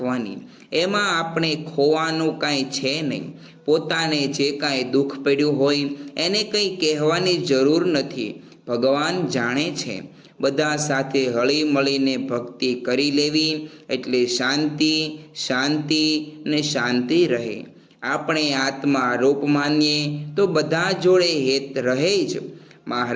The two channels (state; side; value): identical; both; correlation 1.00